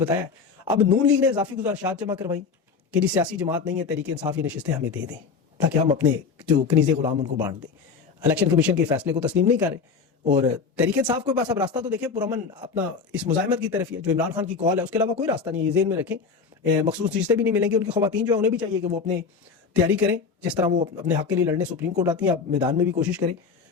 अब नून लीग ने इजाफी गुजारिशात जमा करवाई कि जी सियासी जमात नहीं है, तहरीक इंसाफ ये नशिस्तें हमें दे दें ताकि हम अपने जो कनीज़े गुलाम उनको बांट दें। इलेक्शन कमीशन के फैसले को तस्लीम नहीं कर रहे और तहरीक इंसाफ के पास अब रास्ता तो देखें पुरअमन अपना इस मुजाहिमत की तरफ ही है, जो इमरान खान की कॉल है उसके अलावा कोई रास्ता नहीं है। ये ज़हन में रखें, मखसूस चीज़ें भी नहीं मिलेंगी। उनकी ख़वातीन जो है उन्हें भी चाहिए कि वो अपने तैयारी करें, जिस तरह वो अपने हक़ के लिए लड़ने सुप्रीम कोर्ट आती हैं, आप मैदान में भी कोशिश करें।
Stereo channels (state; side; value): quieter; right; 5.2 dB